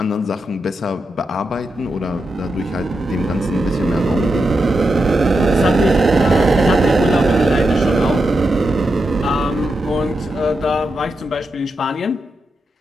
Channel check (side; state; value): both; normal; correlation 0.87